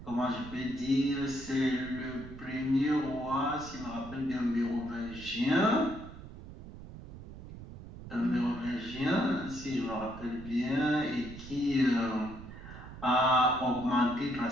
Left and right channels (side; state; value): right; noise; rumble, 14 dB below the sound